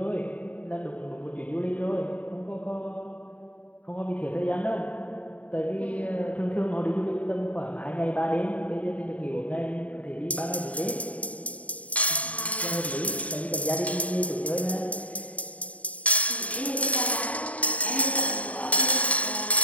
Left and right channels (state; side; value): late; right; 0.068 ms